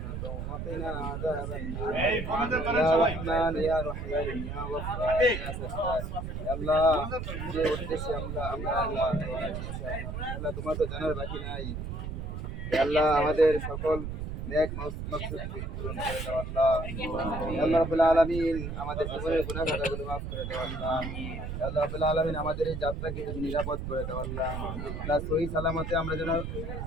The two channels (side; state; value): right; noise; rumble, 5 dB below the sound